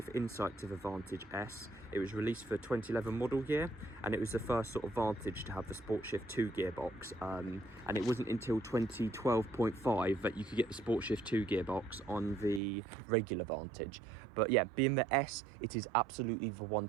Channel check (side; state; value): left; drops out; at 12.6 s